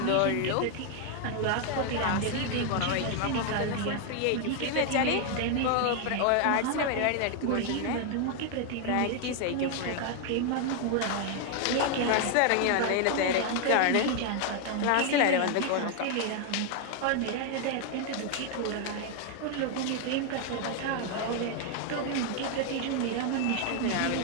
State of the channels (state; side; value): different; both; correlation 0.00